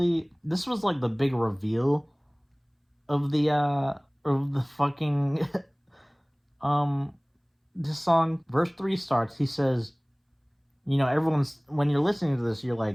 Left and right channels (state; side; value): identical; both; correlation 1.00